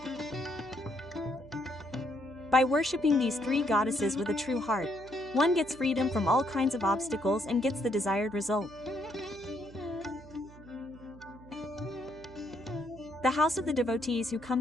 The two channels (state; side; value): noise; right; hum, 20 dB below the sound